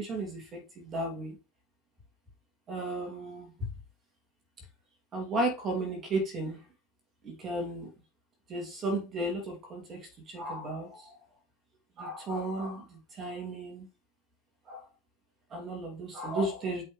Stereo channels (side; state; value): both; normal; correlation 0.44